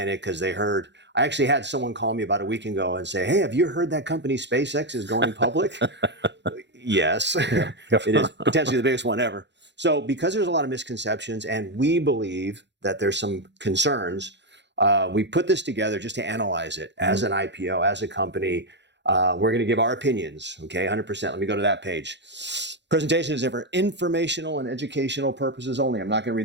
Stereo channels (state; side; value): late; left; 0.52 ms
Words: it because they heard. I actually had someone call me about a week ago and say, hey, have you heard that company SpaceX is going public? Yes, it is potentially the biggest one ever. So because there's a lot of misconceptions and we believe that there's some concerns, we put this together just to analyze it as an IPO, as a company. We're going to give our opinions, okay, 100%. Let me go to that page. Presentation is for informational and educational purposes only. I'm not going to